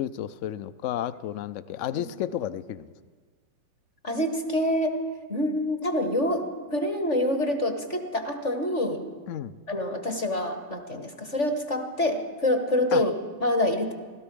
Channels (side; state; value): right; late; 3.4 ms